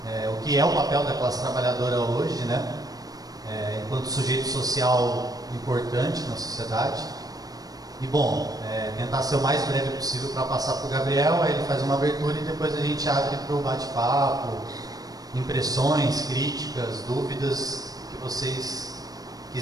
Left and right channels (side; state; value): left; late; 0.18 ms